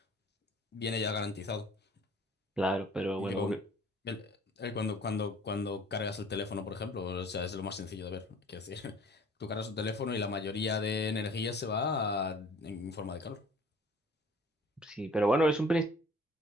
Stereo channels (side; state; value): both; normal; correlation 0.51